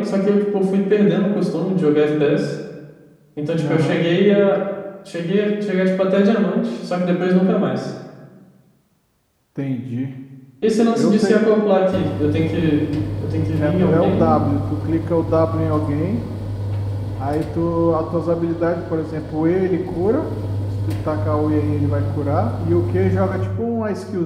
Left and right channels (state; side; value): identical; both; correlation 1.00